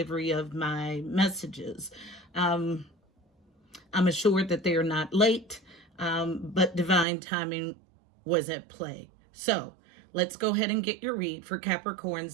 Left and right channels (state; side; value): drops out; left; at 7.1 s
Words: of my messages. I'm assured that they are not late, but divine timing was at play. So, let's go ahead and get your read for Capricorn,